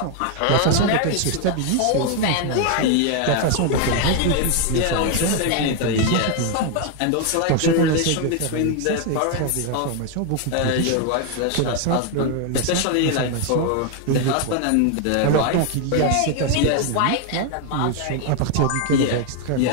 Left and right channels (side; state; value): both; different; correlation 0.00